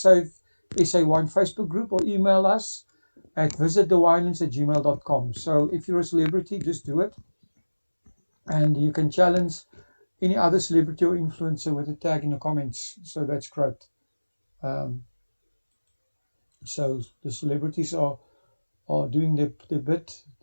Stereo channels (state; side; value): inverted; both; correlation -1.00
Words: Facebook group or email us at visitthewinelands@gmail.com. So if you're a celebrity, just do it. And you can challenge any other celebrity or influencer with a tag in the comments. So that's great. So the celebrities are doing the bit,